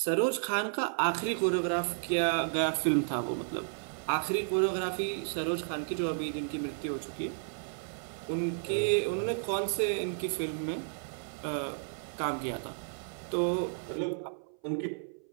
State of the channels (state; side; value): silent; left; 56 dB below the other